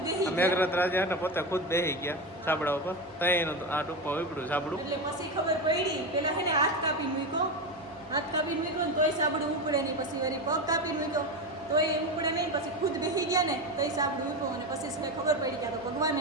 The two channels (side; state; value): both; normal; correlation 0.18